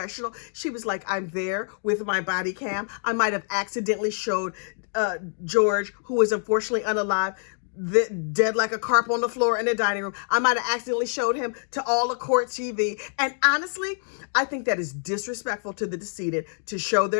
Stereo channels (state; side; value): silent; right; digital silence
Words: She was like, I'm there with my body cam. I might have accidentally showed George, who was unfortunately unalive, dead like a carp on the floor in the dining room. I might have accidentally showed him to all the court TV. And honestly, I think that is disrespectful to the decedent to show